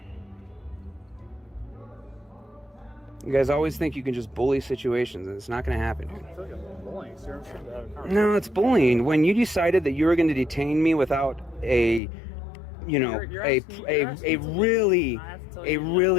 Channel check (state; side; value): drops out; right; at 12.0 s